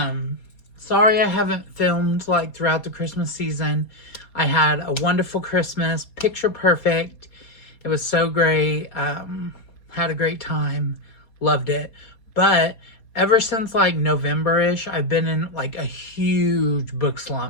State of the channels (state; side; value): late; right; 4.2 ms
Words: I haven't filmed like throughout the Christmas season. I had a wonderful Christmas, picture perfect. It was so great. Had a great time. Loved it. But ever since like November-ish, I've been in like a huge book